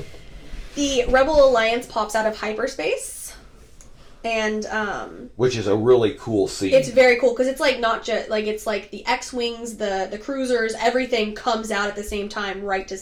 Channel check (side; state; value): both; identical; correlation 1.00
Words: The Rebel Alliance pops out of hyperspace, and which is a really cool scene. It's very cool because it's like not just like it's like the X-wings, the cruisers, everything comes out at the same time, right to